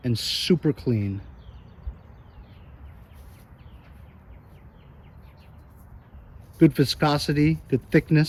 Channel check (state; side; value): identical; both; correlation 1.00